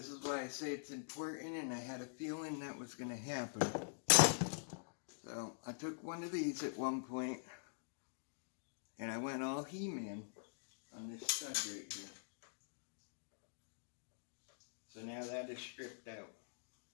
is why I say it's important, and I had a feeling that was going to happen. So I took one of these at one point, and I went all He-Man on this stud right here. So now that is stripped out.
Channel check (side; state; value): right; silent; digital silence